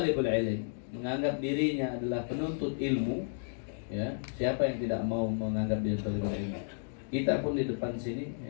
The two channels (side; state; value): right; silent; digital silence